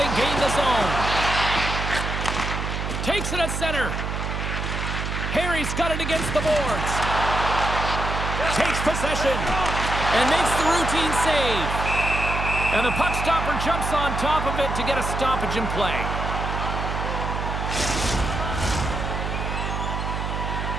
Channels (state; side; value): noise; right; hum, 3 dB below the sound